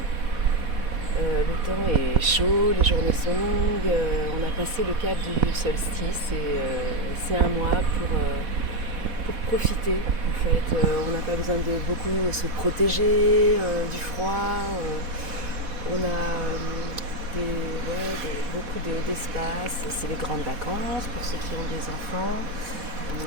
le temps est chaud, les journées sont longues, on a passé le cap du solstice et c'est un mois pour profiter en fait. On n'a pas besoin de beaucoup se protéger du froid, on a beaucoup d'espace, c'est les grandes vacances pour ceux qui ont des enfants.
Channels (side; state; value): left; late; 4.1 ms